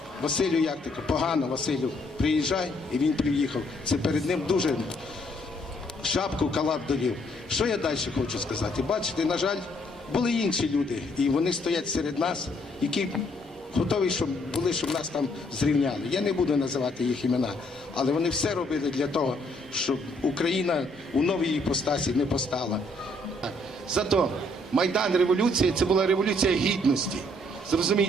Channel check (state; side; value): normal; both; correlation 0.68